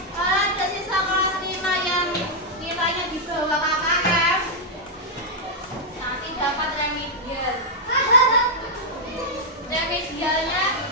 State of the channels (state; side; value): normal; both; correlation -0.04